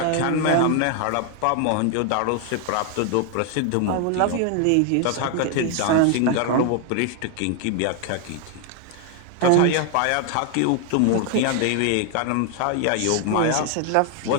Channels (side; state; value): both; different; correlation 0.00